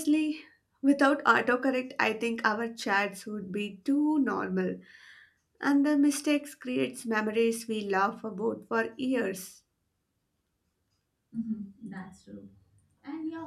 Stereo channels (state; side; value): identical; both; correlation 1.00